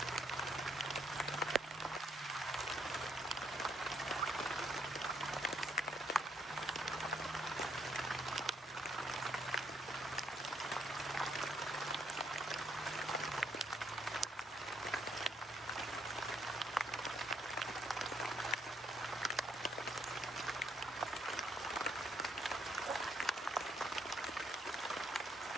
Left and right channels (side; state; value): both; normal; correlation 0.71